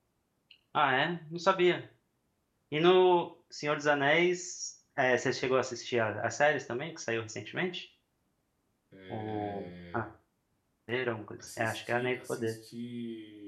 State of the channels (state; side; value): identical; both; correlation 1.00